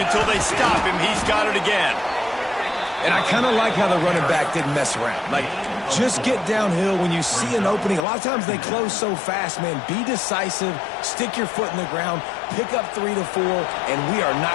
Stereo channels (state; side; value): drops out; right; at 8.1 s